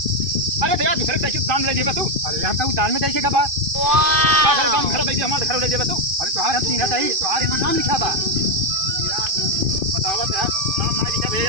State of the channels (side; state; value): left; late; 2.5 ms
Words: अरे तो यार दूसरे साइकिल दान ले जेबा तू अरे हम तो दान में दे के बा। घर दान Wow! घर दे हमारे घर ले जेबा तू अरे तुम्हारा हम तीन ही तुम्हारे यहाँ नाम लिखा बा। यार बतावत यार नाम ना लिखा